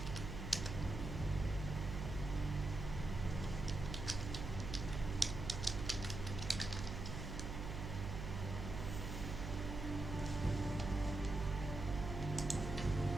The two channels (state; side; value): noise; right; hum, 5 dB below the sound